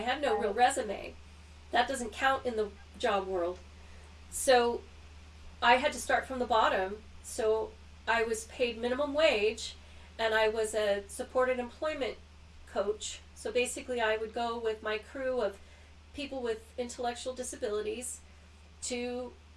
had no real resume. That doesn't count in the job world. So I had to start from the bottom. So I was paid minimum wage, and I was a supported employment coach. So basically, I would go with my crew of people with intellectual disabilities to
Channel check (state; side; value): identical; both; correlation 1.00